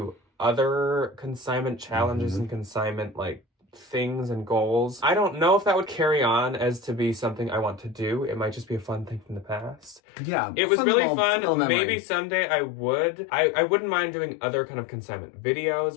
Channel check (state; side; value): drops out; right; at 10.0 s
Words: other consignment challenges and consignment like things and goals. I don't know if that would carry on as to be something I want to do. It might just be a fun thing from the past. Yeah. It was really fun. Maybe someday I would. I wouldn't mind doing other kind of consignment